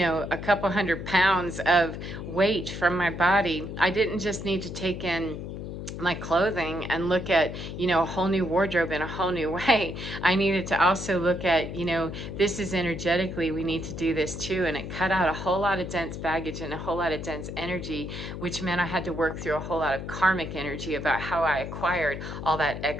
couple 100 pounds of weight from my body, I didn't just need to take in my clothing and look at, a whole new wardrobe in a whole new way. I needed to also look at, this is energetically, we need to do this too. And it cut out a whole lot of dense baggage and a whole lot of dense energy, which meant I had to work through a whole lot of karmic energy about how I acquired all that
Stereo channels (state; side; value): noise; left; hum, 8 dB below the sound